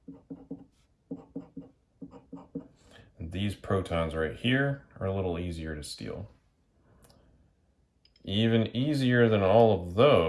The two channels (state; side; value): identical; both; correlation 1.00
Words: And these protons right here are a little easier to steal. Even easier than all of